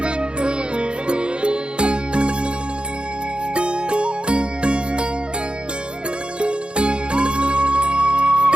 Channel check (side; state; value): left; late; 0.053 ms